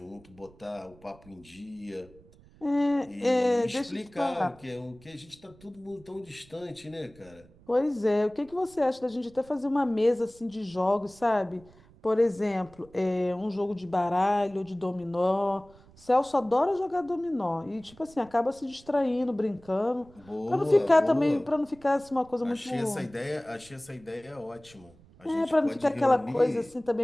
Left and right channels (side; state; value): right; noise; rumble, 26 dB below the sound